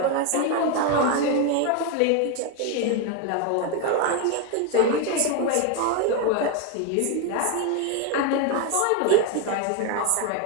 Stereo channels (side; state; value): both; different; correlation 0.02